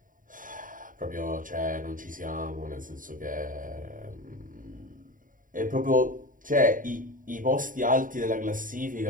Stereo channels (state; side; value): late; left; 0.39 ms